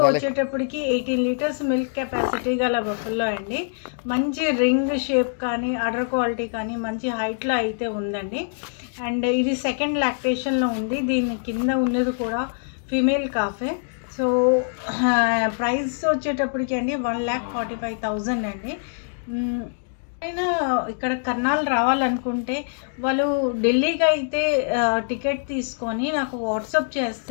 వచ్చేటప్పటికి 18 లీటర్స్ మిల్క్ కెపాసిటీ గల బఫెలో అండి. మంచి రింగ్ షేప్ కానీ అడర్ క్వాలిటీ కానీ మంచి హైట్లో అయితే ఉందండి. అండ్ ఇది సెకండ్ లాక్టేషన్లో ఉంది. దీని కింద ఉన్నది కూడా ఫీమేల్ కాఫే. సో ప్రైస్ వచ్చేటప్పటికి అండి 1,45,000 అండి. అయినా ఇక్కడ కర్నాల్ రావాలనుకుంటే వాళ్ళు ఢిల్లీకి అయితే టికెట్ తీసుకొని నాకు వాట్సాప్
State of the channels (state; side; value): silent; right; digital silence